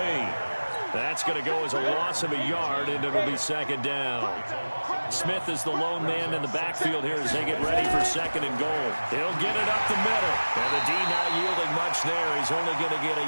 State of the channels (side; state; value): both; inverted; correlation -1.00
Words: That's going to go as a loss of a yard, and it'll be 2nd down. Smith is the lone man in the backfield here as they get ready for 2nd and goal. He'll get it up the middle. And the D not yielding much there. He's only going to get a